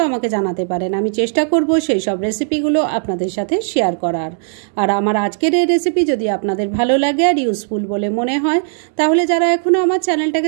আমাকে জানাতে পারেন। আমি চেষ্টা করব সেই সব রেসিপিগুলো আপনাদের সাথে শেয়ার করার। আর আমার আজকের এই রেসিপি যদি আপনাদের ভালো লাগে আর ইউজফুল বলে মনে হয়, তাহলে যারা এখনো আমার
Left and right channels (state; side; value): silent; left; 68 dB below the other